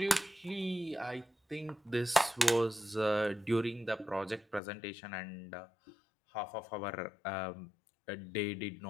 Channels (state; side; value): drops out; right; at 4.6 s